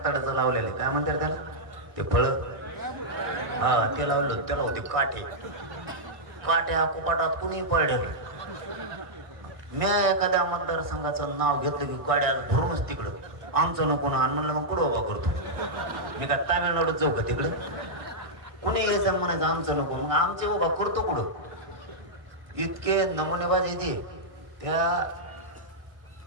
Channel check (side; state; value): left; late; 1.6 ms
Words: लावलेलं काय म्हणतात त्याला ते फळं. हा ते लावलं. त्याला होती काठी. काट्या कुपाटात कुणी पडलेलं. मी एखाद्या मतदारसंघाचं नाव घेतलं की काड्या भरूनच तिकडं आमचं नको ना. म्हणलं मग कुठं उभा करतो मी. का तामिळनाडूत जाऊ का तिकडं. कुणी यायचं म्हणायचं आमचं नको. मग आमचे उभा करतो कुठं. इतके नमुनेबाज येते. त्या